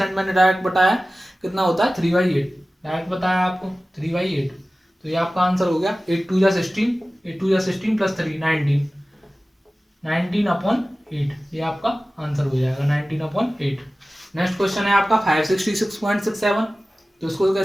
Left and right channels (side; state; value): both; normal; correlation 0.97